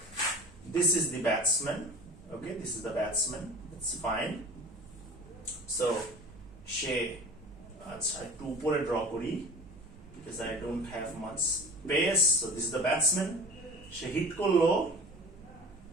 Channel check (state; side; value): normal; both; correlation 0.40